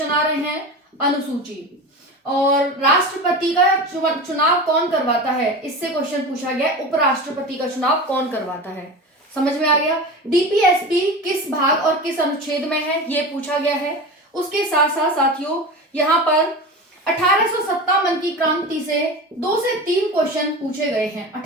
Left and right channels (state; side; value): normal; both; correlation 0.29